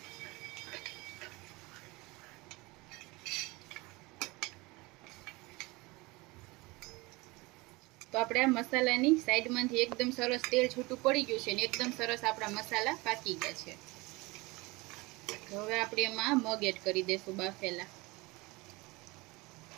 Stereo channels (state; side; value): quieter; left; 23.7 dB